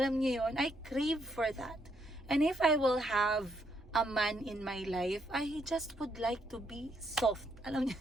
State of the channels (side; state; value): both; normal; correlation 0.74